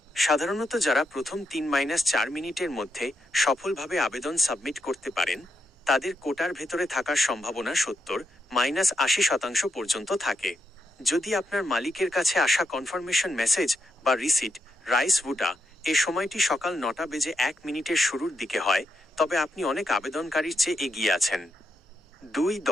সাধারণত যারা প্রথম 3-4 মিনিটের মধ্যে সফলভাবে আবেদন সাবমিট করতে পারেন তাদের কোটার ভেতরে থাকার সম্ভাবনা 70-80% পর্যন্ত থাকে। যদি আপনার মালিকের কাছে আসা কনফার্মেশন মেসেজ বা রিসিট রাইস ভুটা এ সময়টি সকাল 9টা বেজে 1 মিনিটের শুরুর দিকে হয় তবে আপনি অনেক আবেদনকারীর চেয়ে এগিয়ে আছেন।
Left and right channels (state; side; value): normal; both; correlation 0.82